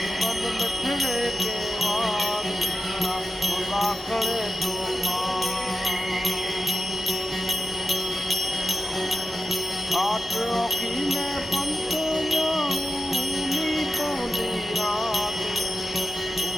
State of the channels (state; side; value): normal; both; correlation 0.92